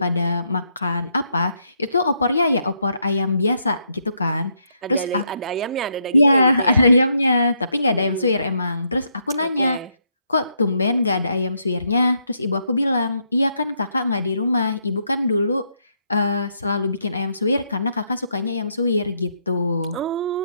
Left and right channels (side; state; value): both; inverted; correlation -0.76